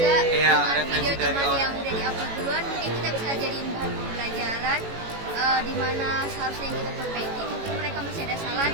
Iya, dengan referensi video dari teman orang. yang udah diupload duluan, mungkin kita bisa jadiin bahan pembelajaran di mana seharusnya yang kita perbaiki mungkin mereka masih ada salah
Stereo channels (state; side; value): late; left; 18 ms